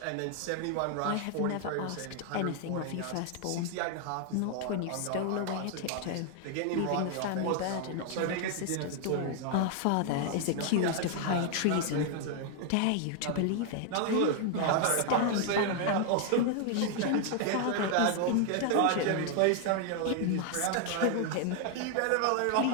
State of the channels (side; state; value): both; different; correlation 0.00